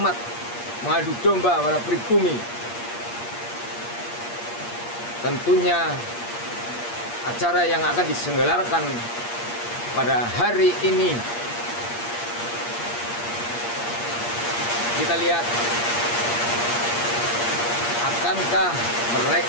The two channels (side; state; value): right; late; 8.5 ms